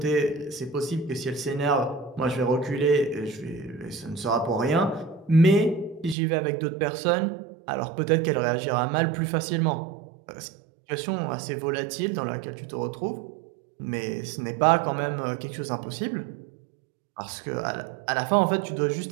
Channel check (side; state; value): left; drops out; at 6.2 s